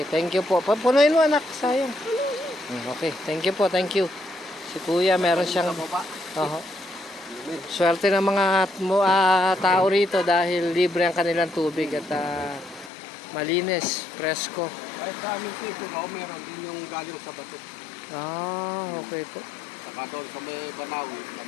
thank you po. Punuin mo, anak. Sayang. Okay, thank you po. Thank you. Si kuya, meron siyang... Swerte ng mga tao rito dahil libre ang kanilang tubig at malinis, presko. Kahit sa aming sito, meron din yung galing sa bato. Okay po. Saka doon sa may Banawi.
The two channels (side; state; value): right; drops out; at 12.9 s